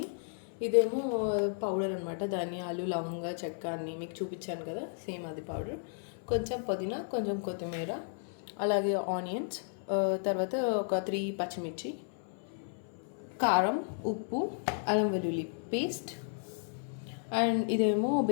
ఇదేమో పౌడర్ అనమాట, ధనియాలు, లవంగ, చెక్క అన్నీ మీకు చూపించాను కదా, సేమ్ అది పౌడర్. కొంచెం పుదీనా, కొంచెం కొత్తిమీర, అలాగే ఆనియన్స్, తర్వాత ఒక 3 పచ్చిమిర్చి, కారం, ఉప్పు, అల్లం వెల్లుల్లి పేస్ట్, అండ్ ఇదేమో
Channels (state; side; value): silent; right; 55 dB below the other